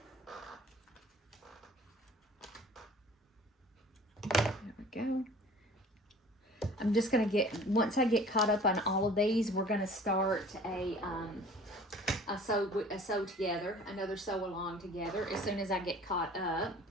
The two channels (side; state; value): both; normal; correlation 0.48